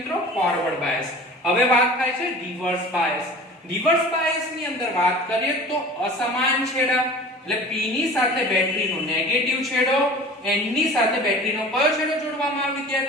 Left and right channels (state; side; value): normal; both; correlation 0.41